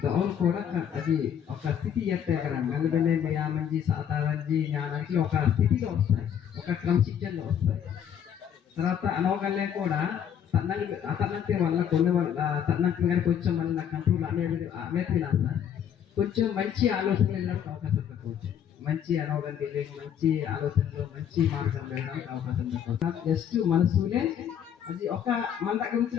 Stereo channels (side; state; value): right; quieter; 8.9 dB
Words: డౌన్ కూడా అది ఒక స్థితి చేస్తాయి కదా. మెల్లమెల్ల నియామంజీ సాధారణజీ జ్ఞానానికి ఒక స్థితిలో వస్తాయి, ఒక క్రమశిక్షణలో వస్తాయి. తర్వాత అనవగల్నే కూడా అతనంతే వల్ల కొన్ని తనంతే కానీ కొంచెం మళ్ళీ నా కంట్రోల్ అనేది సార్ కొంచెం మంచి ఆలోచనలు వెళ్ళడానికి అవకాశం తక్కువచ్చు. మంచి అనవగండి లేదు, మంచి ఆలోచనలు మంచి మార్గం వెళ్ళడానికి అవకాశం తక్కువ. జస్ట్ మనసులే అది ఒక మన దగ్గర